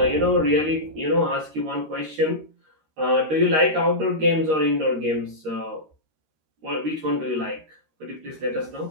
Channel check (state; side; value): late; left; 13 ms